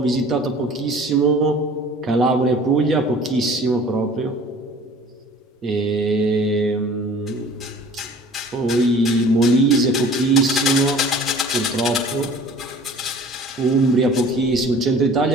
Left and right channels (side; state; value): both; normal; correlation 0.47